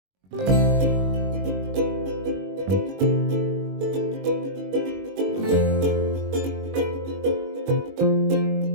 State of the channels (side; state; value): left; late; 21 ms